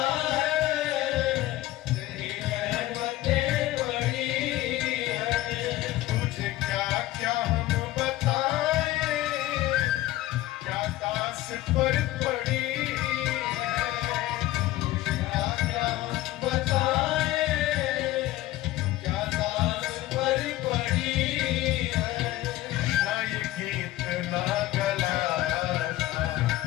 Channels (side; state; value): right; quieter; 16.0 dB